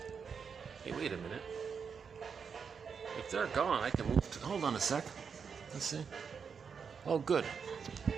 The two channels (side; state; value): left; quieter; 6.2 dB